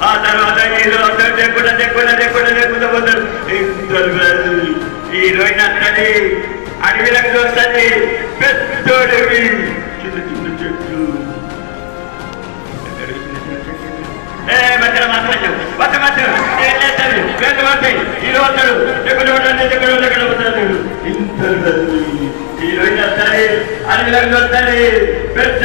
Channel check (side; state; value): right; silent; 67 dB below the other